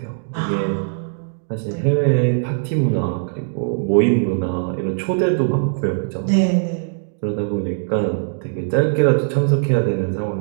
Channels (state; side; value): silent; left; digital silence